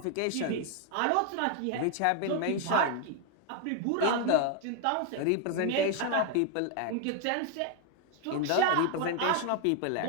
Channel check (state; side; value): different; both; correlation 0.00